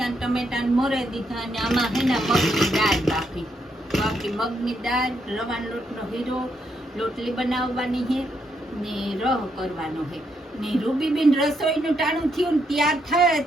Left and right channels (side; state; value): both; normal; correlation 0.78